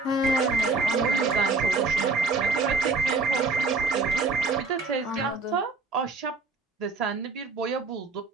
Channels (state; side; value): quieter; left; 3.9 dB